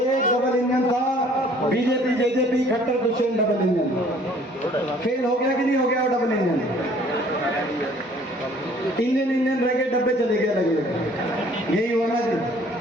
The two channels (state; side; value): normal; both; correlation 0.56